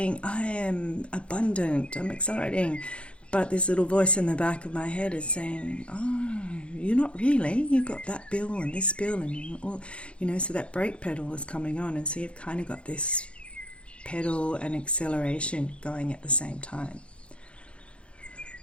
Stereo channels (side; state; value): right; late; 0.059 ms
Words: I am abundant, I'm accelerating, but this little voice in the back of my head is saying, oh, you're not really, you've got that bill and this bill, and so that brake pedal is coming on, and so you've kind of got this pedal and acceleration going at the same time.